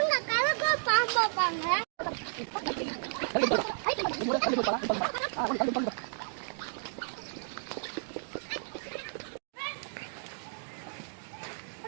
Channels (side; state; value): left; silent; digital silence